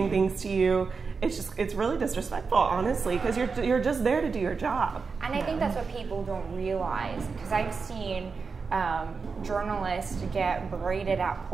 things to you. It's really disrespectful, honestly, because you're just there to do your job. And I think that's what people don't realize, because I've seen journalists get berated at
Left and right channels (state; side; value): quieter; left; 4.9 dB